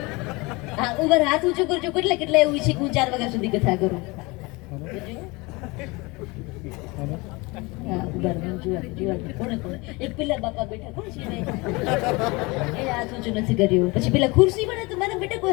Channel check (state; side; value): quieter; right; 25.0 dB